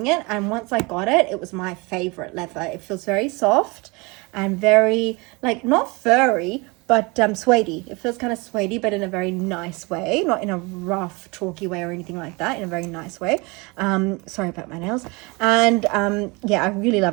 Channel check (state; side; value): quieter; left; 26.9 dB